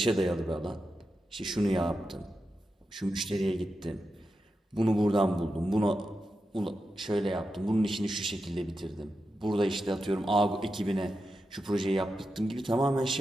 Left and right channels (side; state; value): both; normal; correlation 0.89